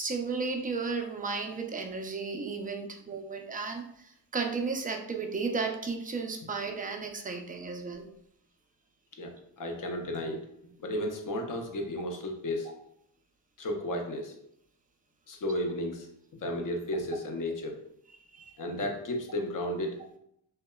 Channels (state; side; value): normal; both; correlation 0.13